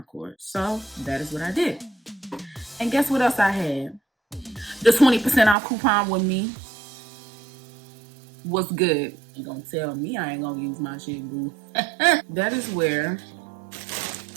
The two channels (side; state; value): left; drops out; at 5.6 s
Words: So that is what I did. And guess what else I had? The 20% off coupon with me was good. You gonna tell me I ain't gonna use my shit, boo. That is where